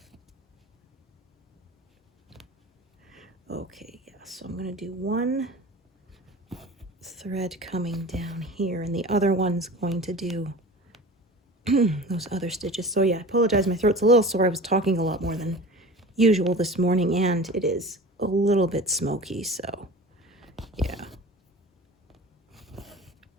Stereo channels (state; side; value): normal; both; correlation 0.37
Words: Okay, yeah, so I'm gonna do one thread coming down here, and the other one's going to do those other stitches. So yeah, I apologize, my throat's a little sore. I was talking a lot more than usual this morning, and it is a little bit smoky, so yeah.